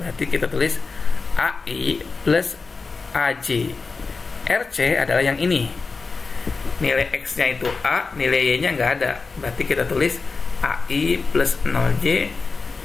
kita tulis AI plus AJ. RC adalah yang ini. Nilai X-nya itu A, nilai Y-nya nggak ada. Berarti kita tulis AI plus 0J.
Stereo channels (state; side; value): quieter; right; 4.3 dB